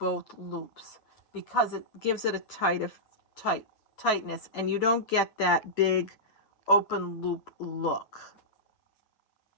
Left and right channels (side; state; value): right; late; 8.5 ms